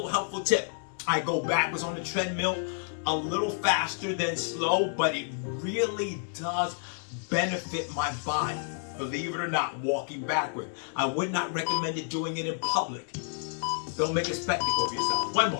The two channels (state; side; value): silent; right; 58 dB below the other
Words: helpful tip. I go backwards on the treadmill a little faster than slow, but it really does benefit my body. Believe it or not, walking backward. I would not recommend it doing it in public. Don't make a spectacle of yourself. One